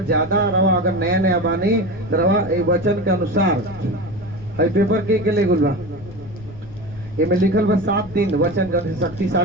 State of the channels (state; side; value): noise; left; rumble, 17 dB below the sound